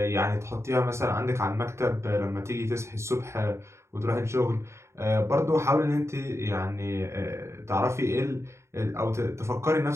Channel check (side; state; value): left; late; 0.13 ms